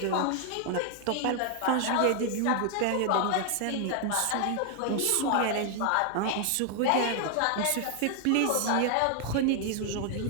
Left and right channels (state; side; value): different; both; correlation 0.00